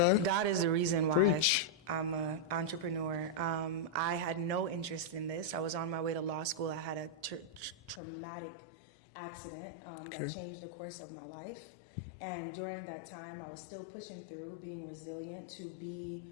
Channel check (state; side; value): drops out; right; at 8.0 s